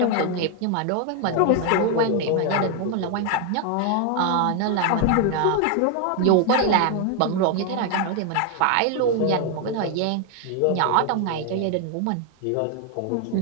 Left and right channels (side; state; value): both; different; correlation 0.01